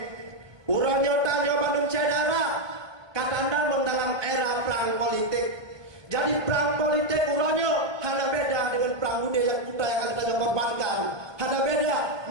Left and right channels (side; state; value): left; late; 1.2 ms